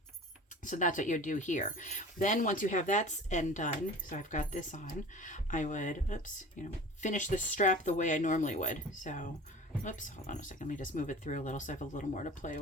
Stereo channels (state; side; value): normal; both; correlation 0.40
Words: So that's what you do here. Then once you have that end done, so I've got this on, I would, finish the strap the way I normally would. So, hold on a second. Let me just move it through a little so I have a little more to play